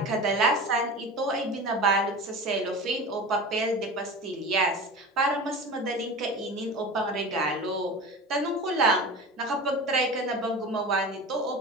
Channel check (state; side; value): normal; both; correlation 0.31